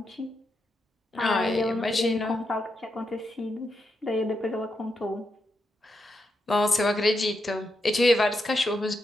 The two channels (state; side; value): normal; both; correlation 0.84